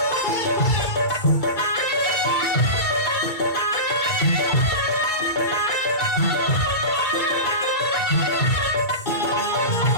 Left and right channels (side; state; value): right; late; 2.3 ms